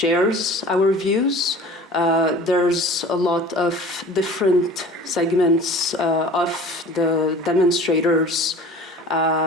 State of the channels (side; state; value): both; normal; correlation 0.43